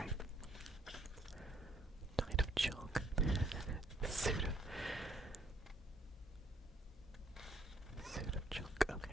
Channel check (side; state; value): both; normal; correlation 0.67